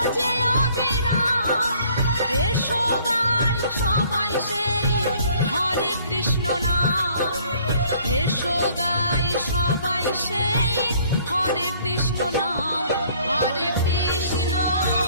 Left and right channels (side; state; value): both; inverted; correlation -0.59